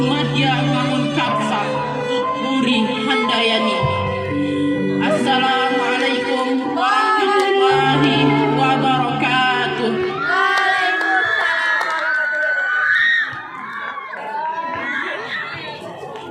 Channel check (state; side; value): identical; both; correlation 1.00